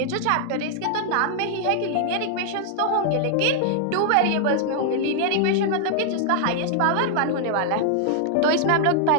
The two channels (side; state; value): both; different; correlation -0.01